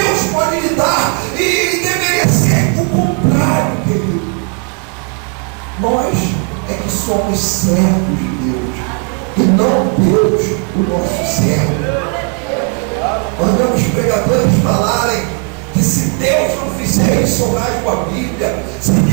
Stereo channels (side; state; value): left; quieter; 36.8 dB